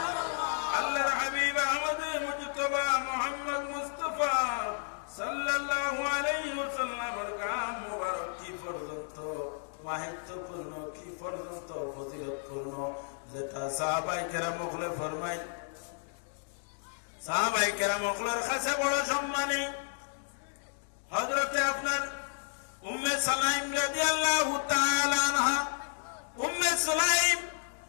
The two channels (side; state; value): right; silent; digital silence